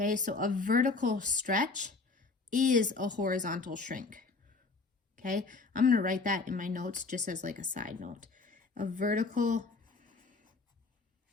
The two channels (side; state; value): right; quieter; 4.0 dB